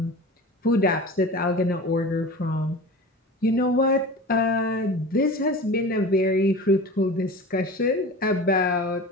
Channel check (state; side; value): normal; both; correlation 0.34